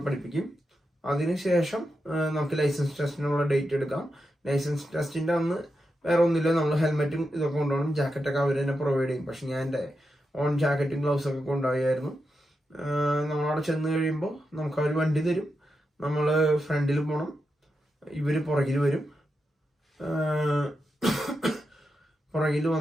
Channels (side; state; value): both; normal; correlation 0.87